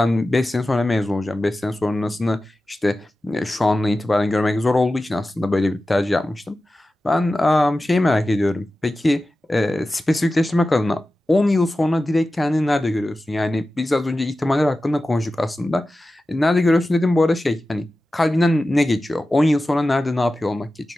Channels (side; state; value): both; normal; correlation 0.94